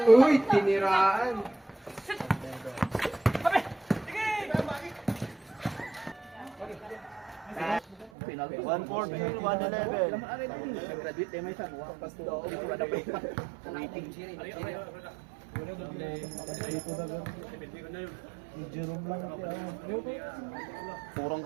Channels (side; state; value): left; drops out; at 8.1 s